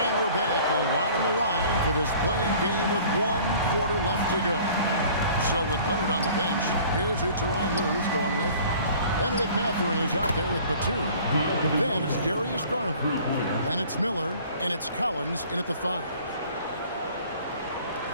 we're back, a lot on the line for this playing game with 1 quarter left to go. So with Leonard on the bench, here's who Tyronn Lue's going with. Benedict Mathurin is out there with Batum. Then it's Darius Garland. Then it's Miller, and it's Collins in at the 5.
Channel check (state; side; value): inverted; both; correlation -0.49